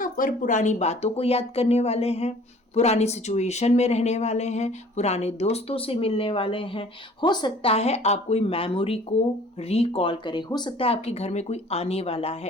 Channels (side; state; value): both; normal; correlation 0.51